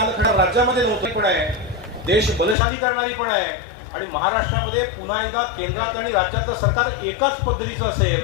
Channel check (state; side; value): drops out; right; at 2.6 s